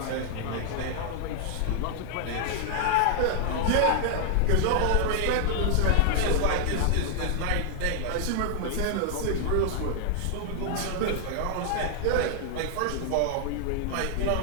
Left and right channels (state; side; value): different; both; correlation 0.00